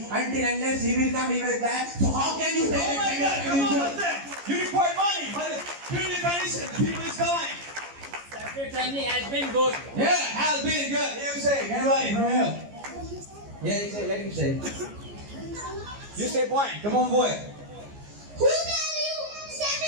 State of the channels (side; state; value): left; late; 14 ms